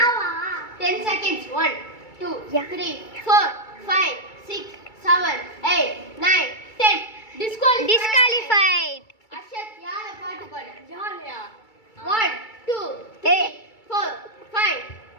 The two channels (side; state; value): right; late; 2.3 ms